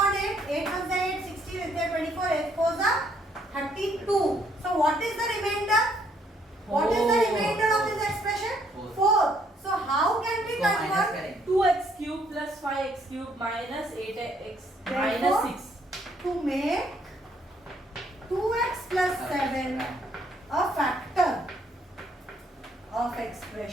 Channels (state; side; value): normal; both; correlation 0.68